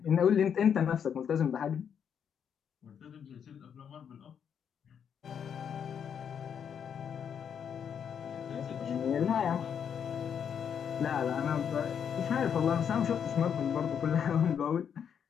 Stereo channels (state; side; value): quieter; right; 7.9 dB